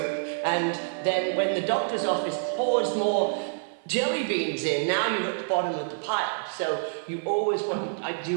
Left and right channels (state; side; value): silent; left; 58 dB below the other